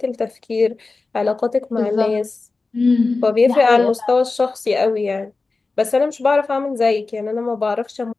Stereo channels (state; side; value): quieter; right; 3.8 dB